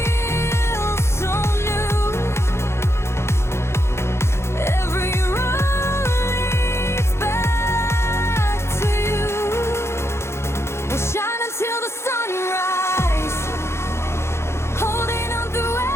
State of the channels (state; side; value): late; right; 0.13 ms